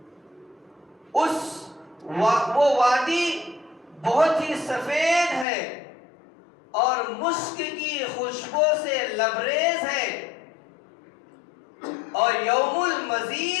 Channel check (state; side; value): drops out; right; at 5.5 s